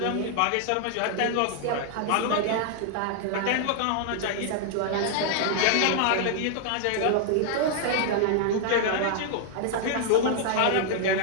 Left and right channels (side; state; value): both; different; correlation 0.00